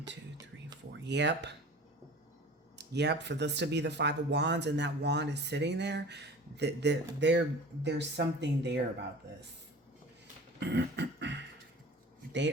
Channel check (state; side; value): normal; both; correlation 0.40